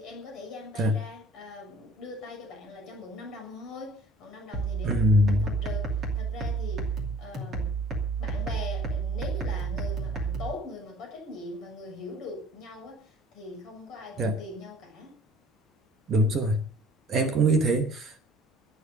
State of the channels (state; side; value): normal; both; correlation 0.51